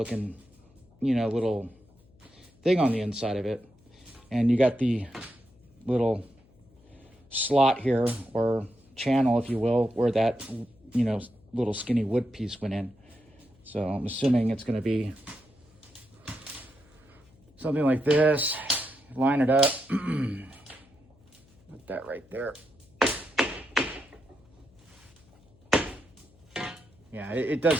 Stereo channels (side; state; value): left; noise; hum, 29 dB below the sound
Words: little thing on the inside of it. And you got the little slot here, or channel, if you will, where that, little skinny wood piece went in. So I'm assuming it's going to be something like this. Line it up. Put that right there. Yeah, it